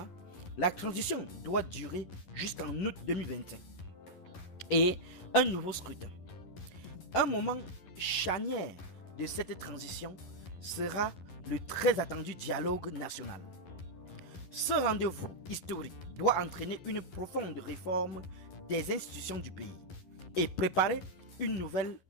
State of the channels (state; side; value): late; right; 11 ms